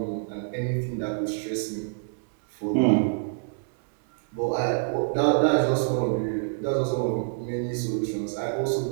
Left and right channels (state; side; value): silent; left; 61 dB below the other